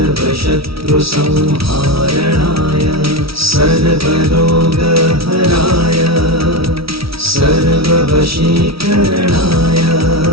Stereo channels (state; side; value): late; left; 0.76 ms